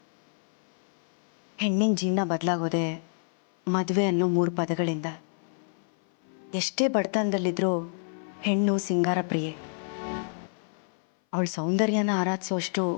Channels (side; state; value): right; silent; 57 dB below the other